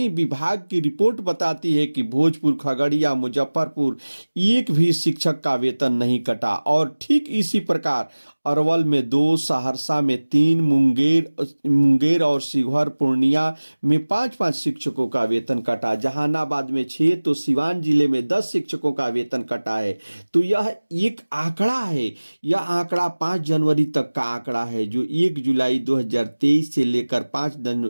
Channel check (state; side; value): inverted; both; correlation -1.00